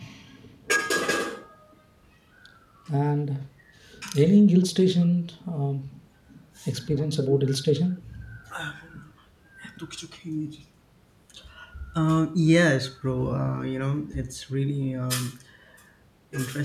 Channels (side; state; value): both; identical; correlation 1.00